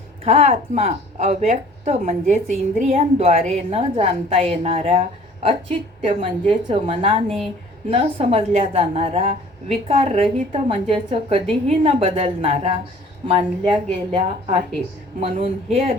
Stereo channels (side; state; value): both; normal; correlation 0.51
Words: हा आत्मा अव्यक्त म्हणजेच इंद्रियांद्वारे न जाणता येणारा, अचित्य म्हणजेच मनाने न समजल्या जाणारा, विकाररहित म्हणजेच कधीही न बदलणारा मानल्या गेला आहे. म्हणून हे